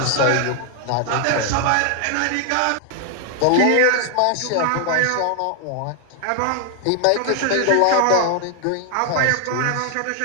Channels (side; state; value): both; different; correlation 0.00